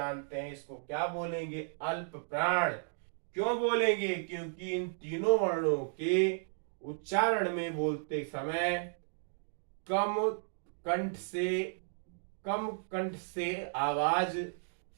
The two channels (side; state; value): left; silent; digital silence